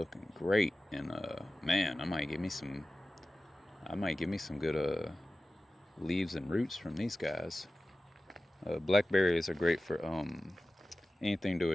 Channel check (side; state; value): both; normal; correlation 0.95